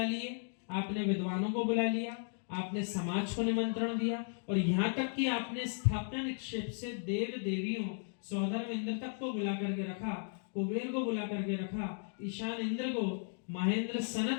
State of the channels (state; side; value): silent; right; 54 dB below the other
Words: लिए, आपने विद्वानों को बुला लिया, आपने समाज को निमंत्रण दिया, और यहाँ तक कि आपने स्थापना निक्षेप से देव देवियों, सौधर्म इंद्र तक को बुला करके रखा, कुबेर को बुला करके रखा, ईशान इंद्र को, महेंद्र